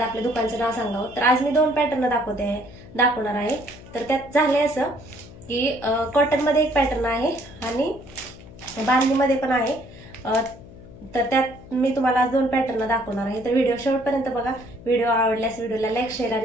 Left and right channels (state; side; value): noise; left; hum, 18 dB below the sound